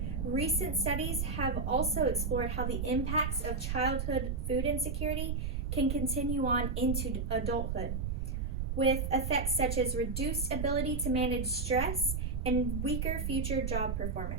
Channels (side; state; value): right; noise; rumble, 1 dB below the sound